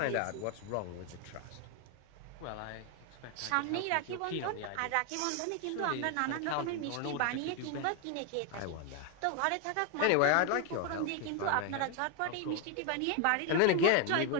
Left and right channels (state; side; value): different; both; correlation 0.01